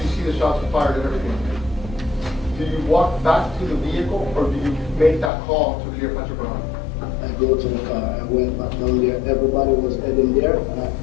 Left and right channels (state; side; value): drops out; right; at 5.3 s